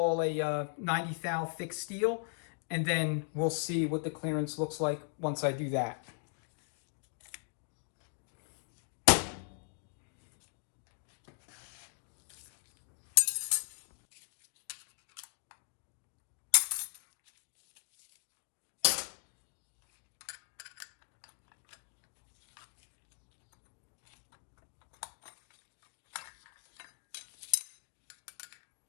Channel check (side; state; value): right; silent; 52 dB below the other